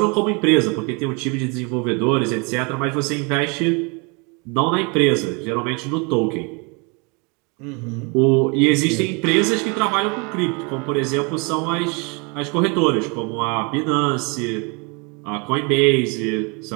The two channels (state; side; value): quieter; left; 31.7 dB